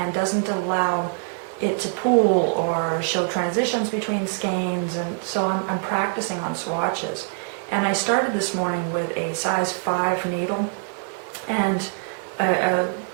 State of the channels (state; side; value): silent; left; 62 dB below the other